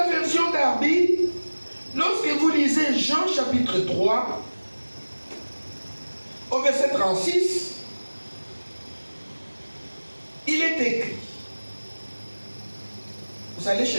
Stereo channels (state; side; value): inverted; both; correlation -1.00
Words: version d'Arby, lorsque vous lisez Jean chapitre 3, au verset 36, il est écrit. Vous allez